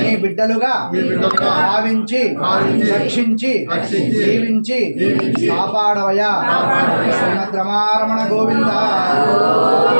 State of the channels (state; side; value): inverted; both; correlation -1.00